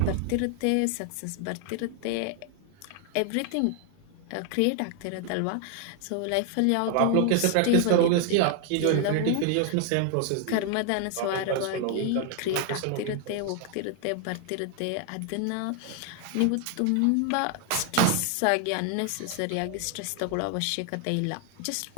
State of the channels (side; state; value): both; different; correlation 0.00